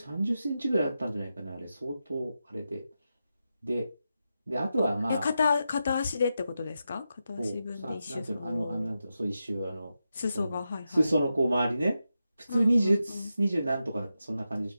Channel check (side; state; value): both; inverted; correlation -0.89